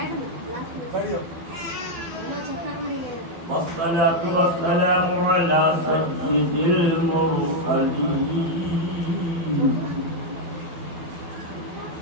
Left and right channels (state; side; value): late; left; 12 ms